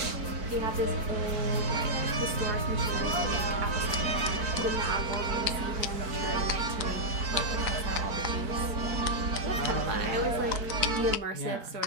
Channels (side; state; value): left; late; 4.5 ms